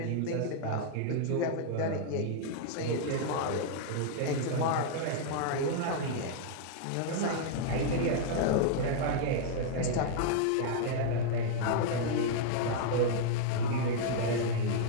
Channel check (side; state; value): both; different; correlation -0.01